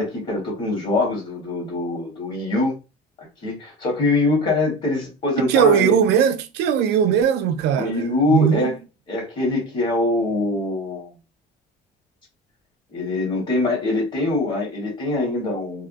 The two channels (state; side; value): normal; both; correlation 0.28